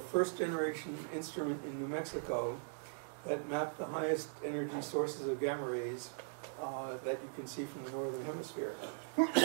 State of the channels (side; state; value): left; silent; digital silence